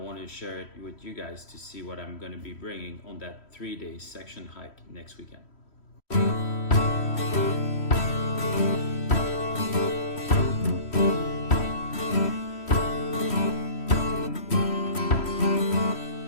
to share it with you guys to see what I'm going to be bringing on that 3-day section hike next weekend.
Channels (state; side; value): late; right; 3.1 ms